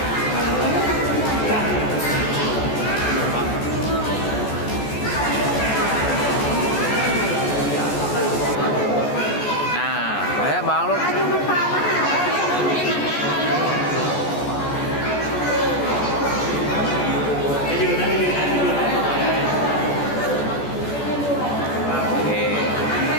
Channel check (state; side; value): late; right; 14 ms